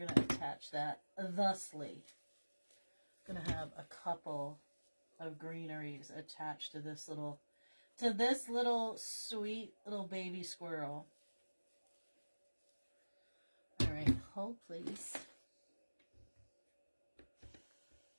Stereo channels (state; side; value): inverted; both; correlation -1.00